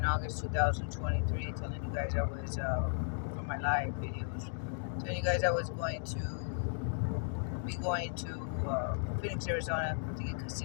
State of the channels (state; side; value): silent; right; digital silence